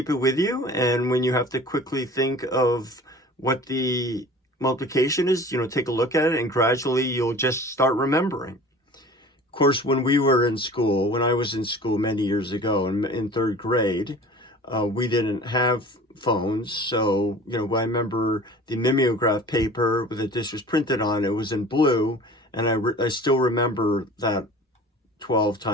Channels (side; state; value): both; normal; correlation 0.43